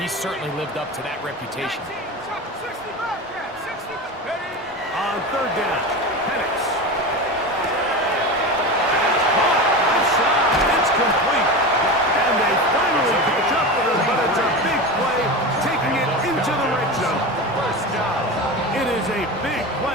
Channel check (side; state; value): both; normal; correlation 0.25